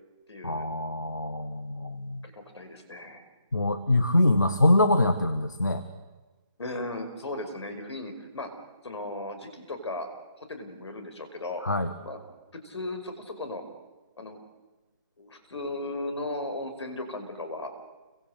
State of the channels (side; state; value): both; inverted; correlation -0.75